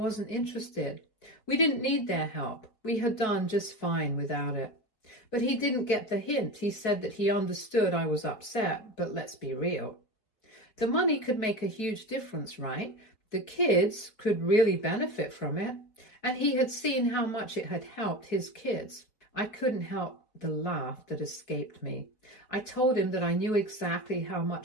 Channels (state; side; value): late; right; 4.6 ms